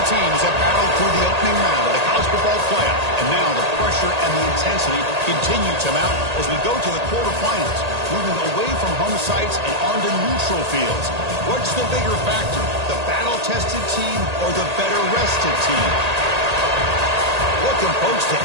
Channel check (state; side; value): late; left; 1.8 ms